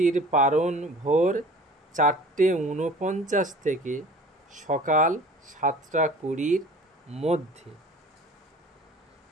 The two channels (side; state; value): both; normal; correlation 0.45